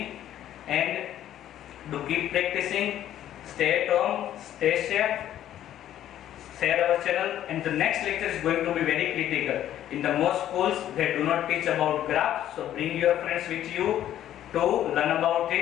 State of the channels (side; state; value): right; quieter; 11.8 dB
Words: and do keep practicing. Stay at home, stay safe, share our channel, and the next lecture is going to be very critical. In the most schools they do not teach about graphs, so bring your friends with you to learn about